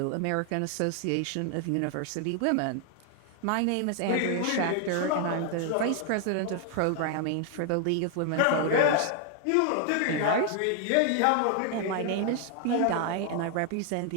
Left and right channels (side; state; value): both; different; correlation 0.00